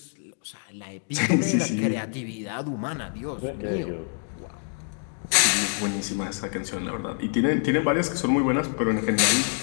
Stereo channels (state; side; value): silent; right; 55 dB below the other